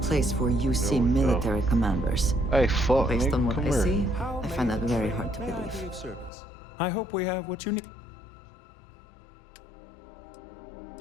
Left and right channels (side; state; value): right; drops out; at 6.3 s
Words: for UC military commanders. Hey, fuck, Based nigga, on what come I here. see, I find that very hard to believe. I hope we have what you need.